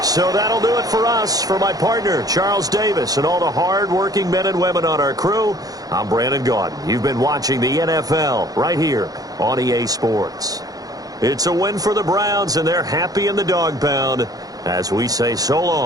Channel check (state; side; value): late; left; 0.18 ms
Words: So that'll do it for us. For my partner, Charles Davis, and all the hard-working men and women on our crew, I'm Brandon Gaudin. You've been watching the NFL right here on EA Sports. It's a win for the Browns, and they're happy in the dog pound as we say so